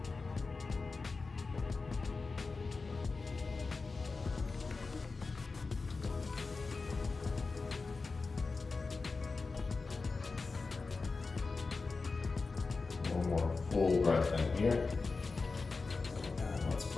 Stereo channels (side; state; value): right; quieter; 4.1 dB